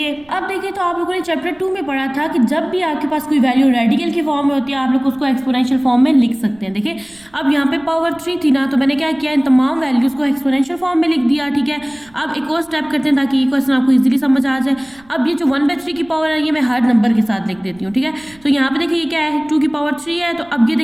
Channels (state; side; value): noise; right; rumble, 28 dB below the sound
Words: अब देखिए तो आप लोगों ने चैप्टर 2 में पढ़ा था कि जब भी आपके पास कोई वैल्यू रेडिकल की फॉर्म में होती है आप लोग उसको एक्सपोनेंशियल फॉर्म में लिख सकते हैं। देखिए अब यहाँ पे पावर 3 थी ना, तो मैंने क्या किया इन तमाम वैल्यूज को एक्सपोनेंशियल फॉर्म में लिख दिया, ठीक है। अब एक और स्टेप करते हैं ताकि ये क्वेश्चन आपको इजीली समझ आ जाए। अब ये जो 1/3 की पावर है ये मैं हर नंबर के साथ लिख देती हूँ, ठीक है। तो यहाँ पे देखिए ये क्या है 2 की पावर 3 है, तो अब ये